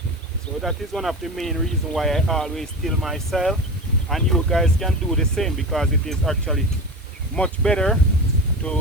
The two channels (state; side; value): normal; both; correlation 0.27